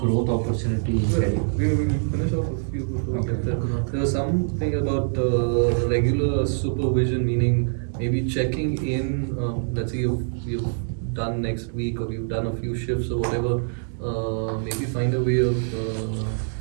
growth opportunity. We will finish off a few before we get there. There was something about regular supervision, meaning maybe checking in. Let's say you've done next week, or you've done a few shifts or whatever. Maybe find a way of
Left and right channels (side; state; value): left; silent; digital silence